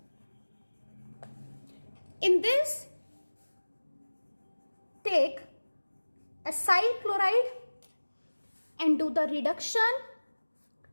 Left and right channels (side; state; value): both; inverted; correlation -1.00